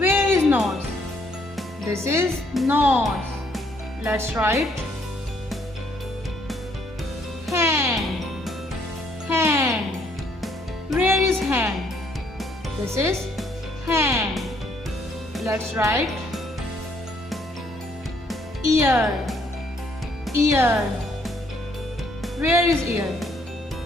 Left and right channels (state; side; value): normal; both; correlation 0.68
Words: is nose? This is nose. Let's write hand. Where is hand? This is hand. Let's write ear. Where is ear?